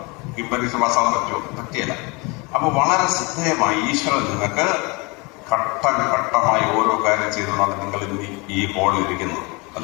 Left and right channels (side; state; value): right; quieter; 27.9 dB